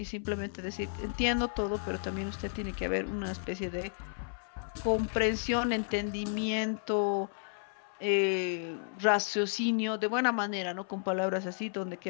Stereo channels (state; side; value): silent; right; 56 dB below the other